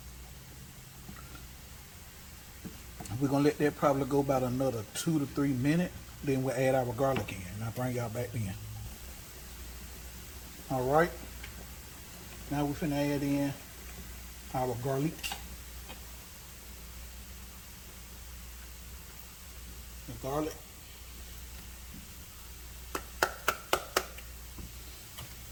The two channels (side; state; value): both; identical; correlation 1.00